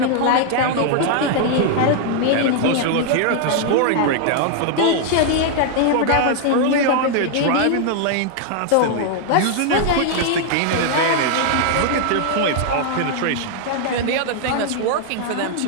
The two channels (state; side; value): different; both; correlation 0.00